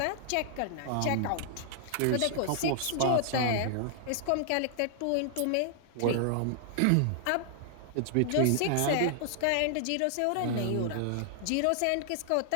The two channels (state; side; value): different; both; correlation -0.01